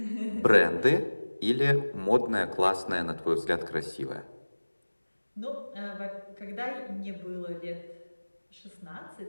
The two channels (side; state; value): both; inverted; correlation -1.00